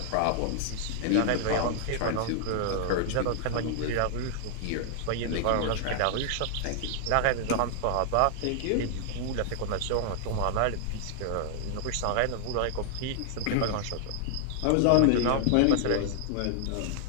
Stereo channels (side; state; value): both; different; correlation 0.00